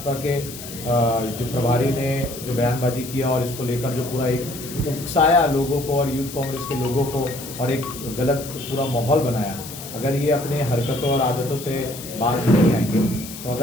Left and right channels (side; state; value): left; noise; hiss, 12 dB below the sound